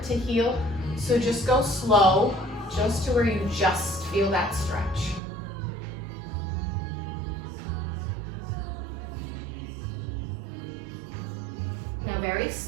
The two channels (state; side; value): drops out; left; at 5.2 s